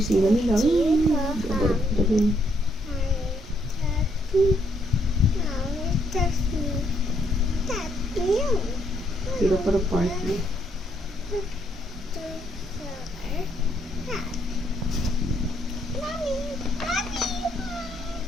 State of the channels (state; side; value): normal; both; correlation 0.72